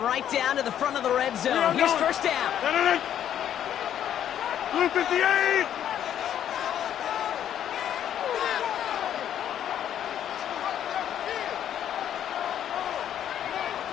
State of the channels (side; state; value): right; quieter; 10.3 dB